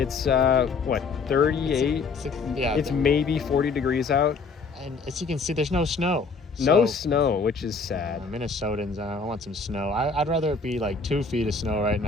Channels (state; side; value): quieter; right; 4.4 dB